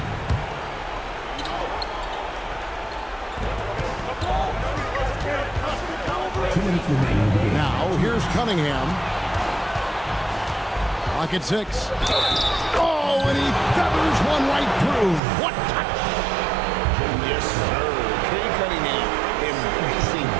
Now, here's Cunningham. Clock at 6. Oh, and he feathers one right through. What touch! Yes, sir. Cade Cunningham embracing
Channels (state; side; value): drops out; left; at 15.2 s